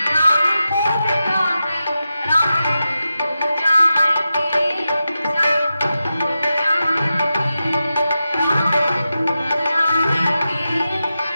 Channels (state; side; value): inverted; both; correlation -0.91